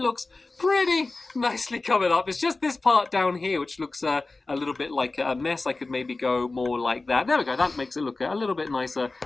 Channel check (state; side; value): quieter; right; 3.4 dB